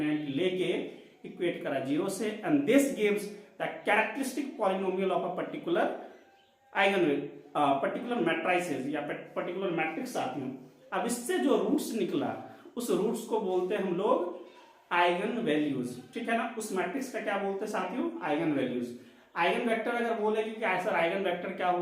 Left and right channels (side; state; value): both; identical; correlation 1.00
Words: लेके इक्वेट करा 0 से, and this gives the characteristic polynomial of a particular particular matrices या पर्टिकुलर मैट्रिक्स साथियों। अब इससे जो रूट्स निकला उस रूट्स को बोलते हैं हम लोग आइगन वैल्यूज, ठीक है ना। उस मैट्रिक्स का क्या बोलते हैं साथियों, आइगन वैल्यूज। आइगन वेक्टर अगर बोलेगी कि सर आइगन वेक्टर क्या